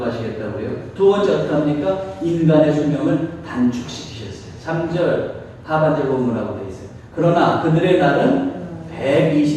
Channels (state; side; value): identical; both; correlation 1.00